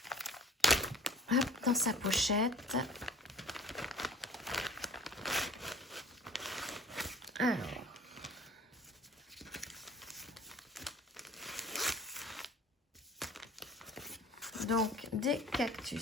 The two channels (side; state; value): both; normal; correlation 0.48